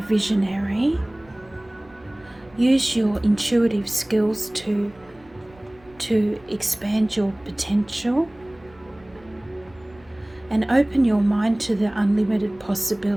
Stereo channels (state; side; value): noise; right; rumble, 27 dB below the sound